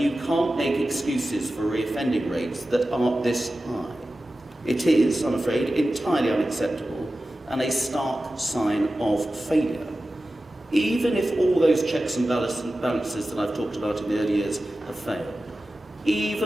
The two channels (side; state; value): both; normal; correlation 0.94